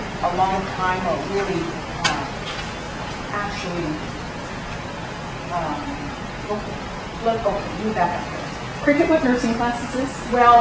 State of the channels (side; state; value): both; identical; correlation 1.00